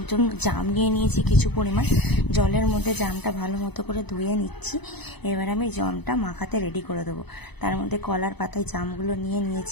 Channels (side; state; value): right; late; 0.99 ms